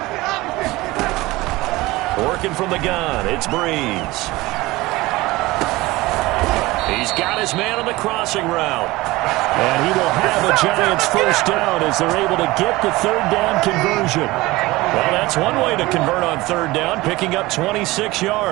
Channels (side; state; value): left; quieter; 20.0 dB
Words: Working from the gun, it's Breeze. He's got his man on the crossing route. And he will have a Giants first down as they're able to get the 3rd down conversion. Well, that's one way to convert on 3rd down, picking up 26